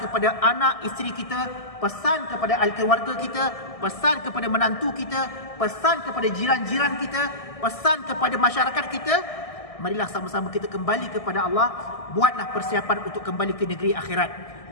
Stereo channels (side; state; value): right; late; 1.6 ms